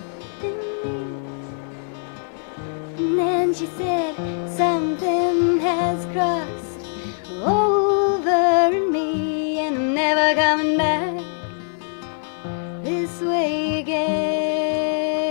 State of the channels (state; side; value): silent; right; 64 dB below the other